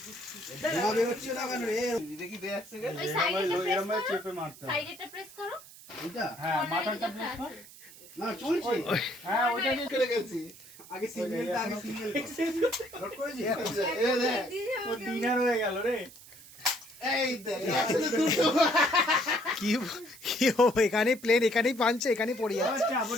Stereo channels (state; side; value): noise; right; hiss, 19 dB below the sound